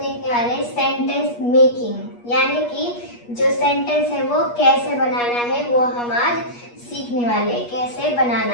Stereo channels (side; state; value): right; late; 8.4 ms